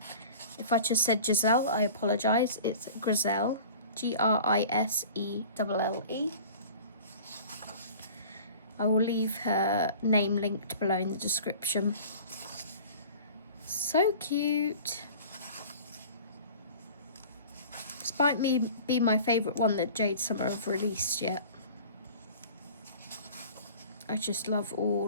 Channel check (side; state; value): both; inverted; correlation -0.42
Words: If I just said Giselle, I apologise. It's Griselle, Griselle. I will leave her name linked below in the description. So cute. Despite me being my favourite one that Jade Summer have released yet. I just love